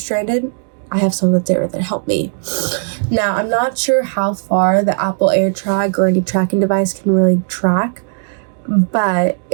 I have someone that's there that help me. Now, I'm not sure how far the Apple AirTag or any tracking device can really track, But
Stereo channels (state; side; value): silent; left; digital silence